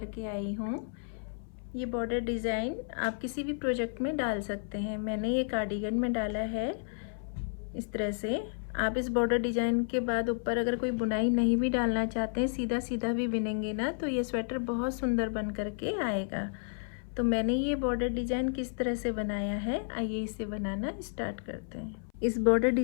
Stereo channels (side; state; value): right; silent; 57 dB below the other